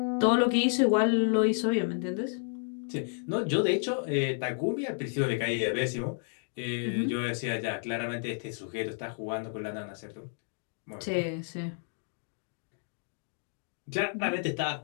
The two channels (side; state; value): right; silent; 57 dB below the other